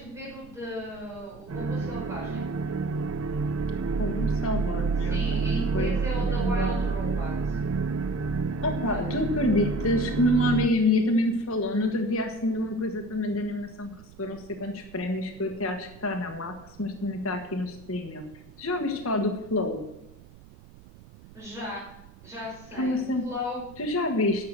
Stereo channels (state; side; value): noise; right; rumble, 21 dB below the sound